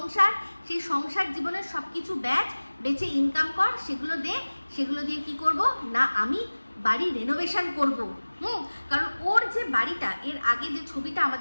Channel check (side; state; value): both; inverted; correlation -1.00